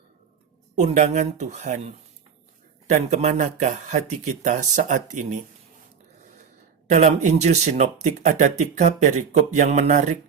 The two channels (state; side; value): quieter; left; 6.8 dB